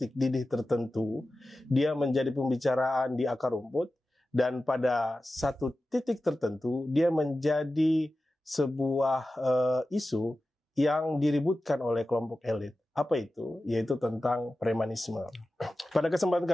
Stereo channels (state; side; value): normal; both; correlation 0.94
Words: didih tertentu. Dia menjadi pembicaraan di akar rumput, dan pada satu titik tertentu dia menjadi sebuah isu yang diributkan oleh kelompok elit. Apa itu? Yaitu tentang premanisme. Pada kesempatan